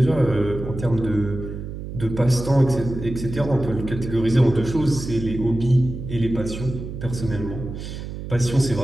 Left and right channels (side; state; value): right; noise; hum, 8 dB below the sound